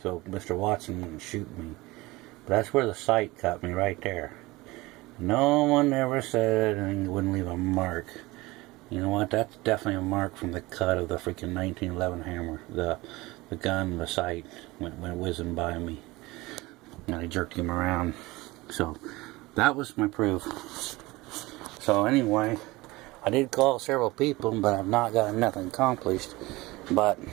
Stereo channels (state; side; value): quieter; left; 21.1 dB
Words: so Mr. Watson wouldn't shoot me. But that's where the sight cut me, right there. No one ever said anything, wouldn't leave a mark. You know what, that's definitely a mark from the cut of the freaking 1911 hammer. The gun, the sight went whizzing by me. And I jerked him around. So, that was my proof. So anyway, I did call several people, but I've not gotten nothing accomplished. But